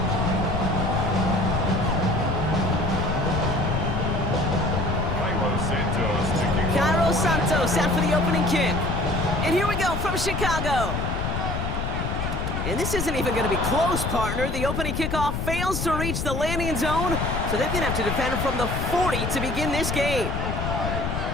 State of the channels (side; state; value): left; noise; rumble, 2 dB below the sound